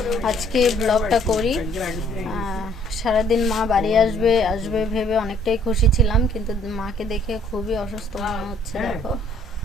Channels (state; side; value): normal; both; correlation 0.62